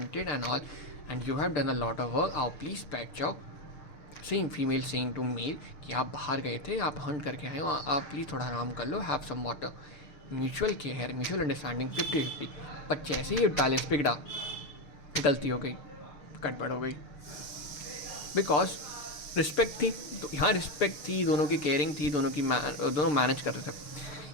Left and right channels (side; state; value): right; late; 6.6 ms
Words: and all and you have done a lot of work, आओ please बैठ जाओ। Saying female saying to male कि आप बाहर गए थे, आप हंट करके आए हो, आप प्लीज़ थोड़ा आराम कर लो, have some water. Mutual care, mutual understanding 50-50। पर जैसे ही बैलेंस बिगड़ा, गलती हो गई, गड़बड़ हो गई, बिकॉज रिस्पेक्ट थी, तो यहाँ रिस्पेक्ट थी, दोनों की केयरिंग थी, दोनों मैनेज कर रहे थे।